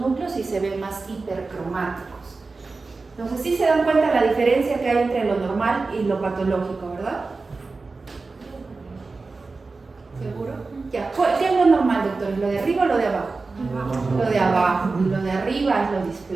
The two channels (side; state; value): left; quieter; 3.9 dB